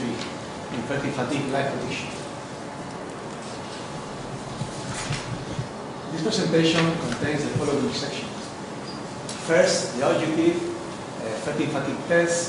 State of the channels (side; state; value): both; identical; correlation 1.00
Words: in Fertig Fatigue Light Prediction. This presentation contains the following sections. First, the objective, Fertig Fatigue